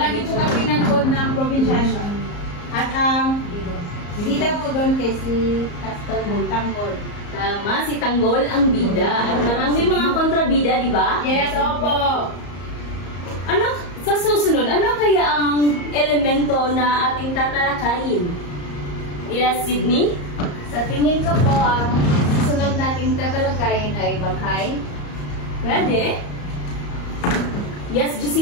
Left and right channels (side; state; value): right; late; 34 ms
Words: po kami nanood ng probinsyano. At ang bida po doon kay si Tanggol. Tama, si Tanggol ang bida. At marami mga kontrabida, di ba? Yes, opo. Ano? Sa susunod, ano kaya ang elemento na ating tatalakayin? Yes, Sydney? Sa tingin ko po, ang susunod nating tatalakayin ay baghay. Pwede? Yes,